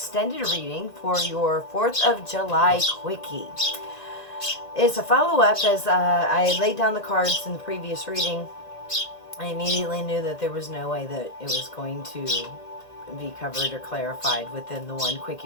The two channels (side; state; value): right; late; 1.9 ms